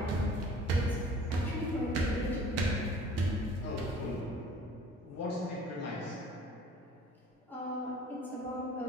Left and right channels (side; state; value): both; normal; correlation 0.50